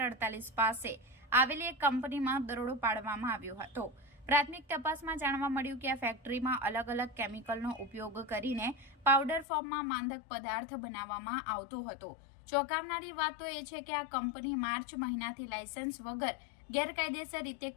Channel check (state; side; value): drops out; right; at 9.5 s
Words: 48 પાસે આવેલી એક કંપનીમાં દરોડો પાડવામાં આવ્યો હતો। પ્રાથમિક તપાસમાં જાણવા મળ્યું કે આ ફેક્ટરીમાં અલગ અલગ કેમિકલનો ઉપયોગ કરીને પાવડર ફોર્મમાં માંદક પદાર્થ બનાવવામાં આવતો હતો। ચોંકાવનારી વાત તો એ છે કે આ કંપની માર્ચ મહિનાથી લાયસન્સ વગર ગેરકાયદેસર રીતે